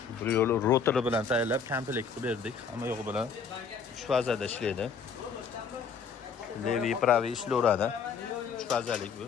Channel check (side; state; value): right; quieter; 5.9 dB